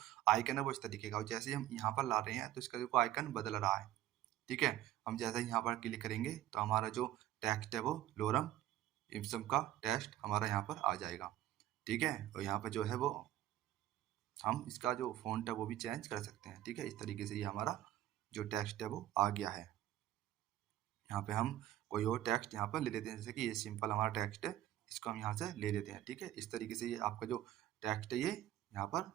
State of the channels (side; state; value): left; quieter; 13.3 dB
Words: आइकन है वो इस तरीके का, और जैसे ही हम यहाँ पर ला रहे हैं तो इसका जो आइकन बदल रहा है। ठीक है, हम जैसे ही यहाँ पर क्लिक करेंगे तो हमारा जो टेक्स्ट है वो लोरम इप्सम का टेक्स्ट हमारा यहाँ पर आ जाएगा। ठीक है, और यहाँ पर जो है वो हम इसका जो फ़ॉन्ट है वो भी चेंज कर सकते हैं। ठीक है, इस तरीके से ये हमारा जो टेक्स्ट है वो आ गया है। यहाँ पे हम कोई और टेक्स्ट यहाँ पर ले लेते हैं, जैसे कि ये सिंपल हमारा टेक्स्ट है, इसको हम यहाँ से ले लेते हैं। ठीक है, इस तरीके से ये आपका जो टेक्स्ट है ये यहाँ पर